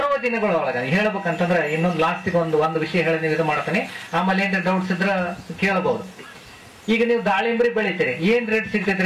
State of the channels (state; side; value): identical; both; correlation 1.00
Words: ದಿನಗಳೊಳಗ ಹೇಳ್ಬೇಕಂತಂದ್ರೆ ಇನ್ನೊಂದು ಲಾಸ್ಟಿಗೆ ಒಂದು ವಿಷಯ ಹೇಳಿ ನೀವು ಇದು ಮಾಡ್ತಾನೆ. ಆಮೇಲೆ ಏನ್ರಿ ಡೌಟ್ಸ್ ಇದ್ರ ಕೇಳಬಹುದು. ಈಗ ನೀವು ದಾಳಿಂಬ್ರಿ ಬೆಳಿತೀರಿ, ಏನ್ ರೇಟ್